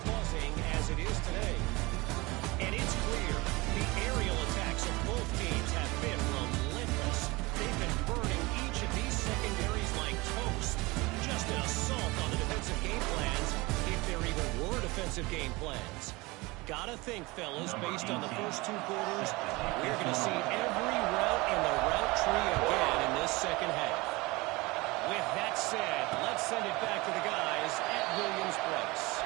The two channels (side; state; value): left; quieter; 23.2 dB